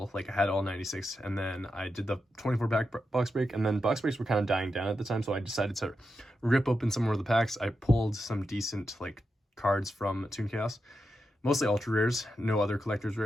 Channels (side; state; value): both; normal; correlation 0.87